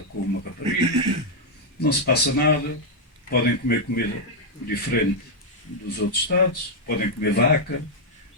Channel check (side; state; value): both; normal; correlation -0.02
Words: com uma rapariga, não se passa nada, podem comer comida diferente dos outros estados, podem comer vaca,